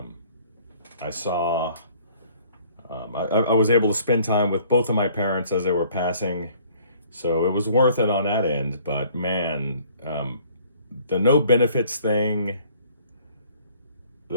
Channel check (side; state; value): both; inverted; correlation -0.57